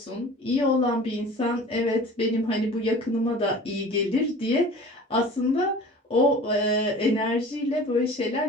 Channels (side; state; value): both; normal; correlation 0.42